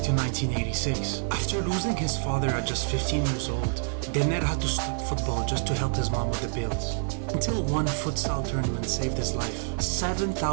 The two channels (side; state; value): left; silent; digital silence